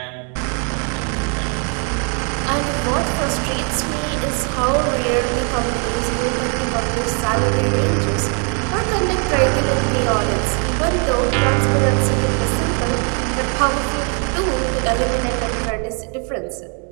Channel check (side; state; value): left; quieter; 39.1 dB